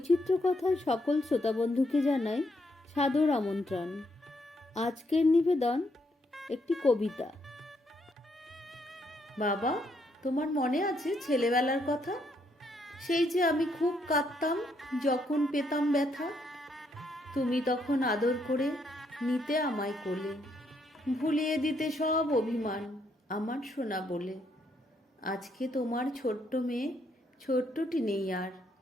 কথায় সকল শ্রোতাবন্ধুকে জানাই সাদর আমন্ত্রণ। আজকের নিবেদন একটি কবিতা। বাবা, তোমার মনে আছে ছেলেবেলার কথা? সেই যে আমি খুব কাঁদতাম যখন পেতাম ব্যথা। তুমি তখন আদর করে নিতে আমায় কোলে, ভুলিয়ে দিতে সব অভিমান আমার সোনা বলে। আজকে তোমার ছোট্ট মেয়ে ছোট্টটি নেই আর,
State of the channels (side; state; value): both; normal; correlation 0.75